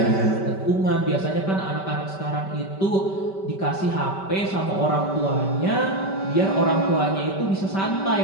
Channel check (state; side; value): late; right; 5.2 ms